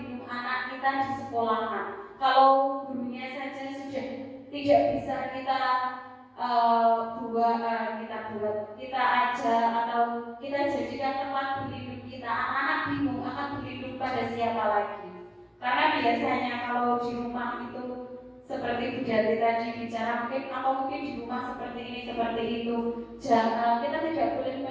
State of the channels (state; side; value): identical; both; correlation 1.00